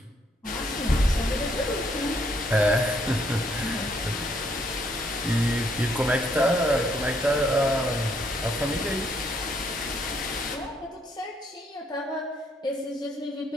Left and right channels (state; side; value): normal; both; correlation 0.71